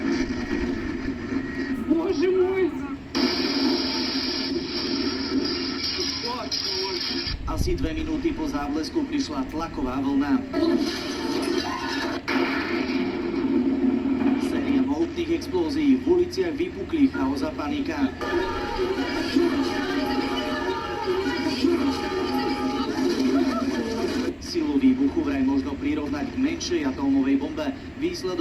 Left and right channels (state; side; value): identical; both; correlation 1.00